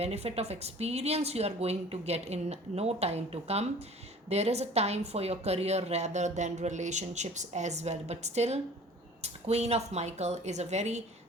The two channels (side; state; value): both; normal; correlation 0.47